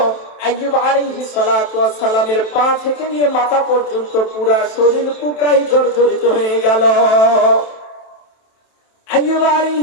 আইয়ুব আলাইহিস সালাতু ওয়াস সালামের পা থেকে নিয়ে মাথা পর্যন্ত পুরো শরীর পোকায় জর্জরিত হয়ে গেল। আইয়ুব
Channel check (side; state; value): right; late; 27 ms